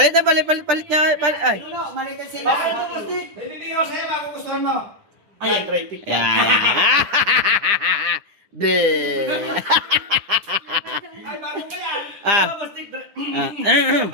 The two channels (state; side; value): late; left; 9.9 ms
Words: na, palit niya. Ay. No, maliit sa iyo. Bakit ito, Rusty? Hindi ko sa'yo, bago gustuhan mo. Ayan, try pick. Yan. Be. Ay, bago ba yan? Ah.